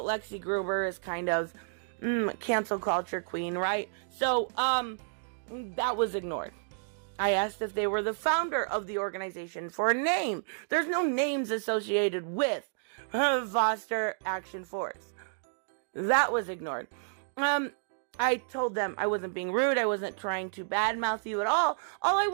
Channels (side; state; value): left; silent; digital silence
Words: Lexi Gruber is kind of cancel culture queen, right? So, that was ignored. I asked if they were the founder of the organization for a name. There's no names associated with Foster Action Force. That was ignored. I told them I wasn't being rude. I wasn't trying to badmouth you at all. All I